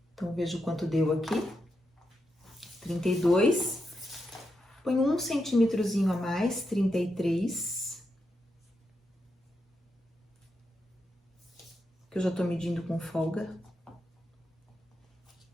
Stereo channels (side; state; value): both; normal; correlation 0.85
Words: Então, vejo quanto deu aqui. 32. Põe 1 centímetrozinho a mais, 33. Que eu já tô medindo com folga.